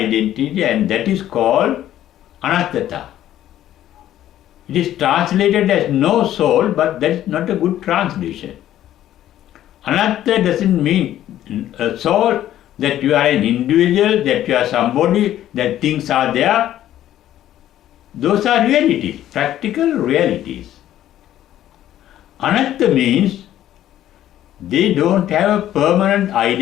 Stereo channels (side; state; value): right; quieter; 12.4 dB